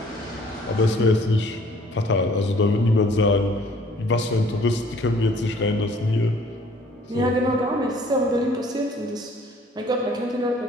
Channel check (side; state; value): both; normal; correlation 0.57